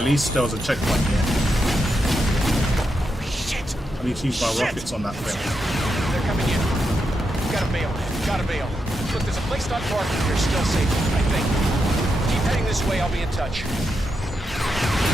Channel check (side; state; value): both; normal; correlation 0.84